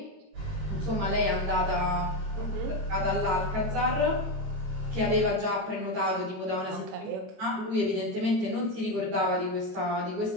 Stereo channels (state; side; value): late; left; 22 ms